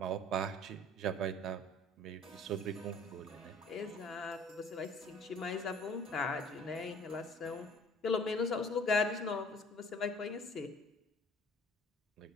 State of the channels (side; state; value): both; normal; correlation 0.51